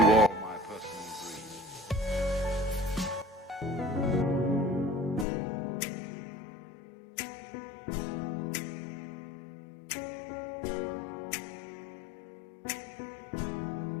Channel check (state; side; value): drops out; right; at 5.2 s